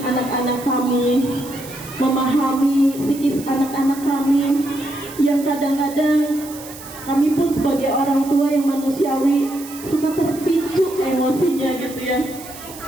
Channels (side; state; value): right; noise; hiss, 15 dB below the sound